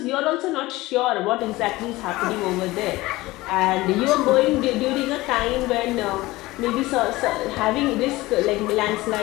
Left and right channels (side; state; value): right; quieter; 19.4 dB